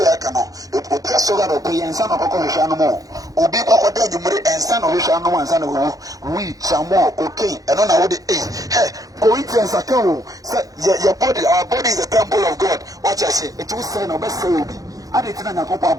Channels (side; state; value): left; late; 0.17 ms